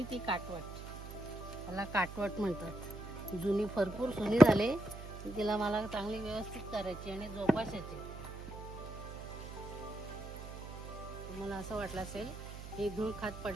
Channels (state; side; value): noise; right; hum, 11 dB below the sound